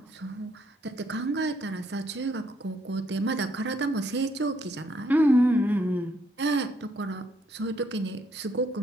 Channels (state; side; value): normal; both; correlation 0.71